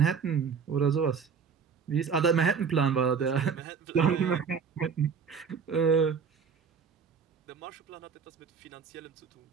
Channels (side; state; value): left; quieter; 6.1 dB